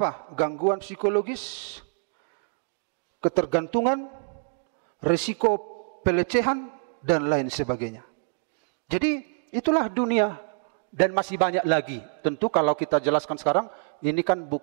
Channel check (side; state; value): left; silent; digital silence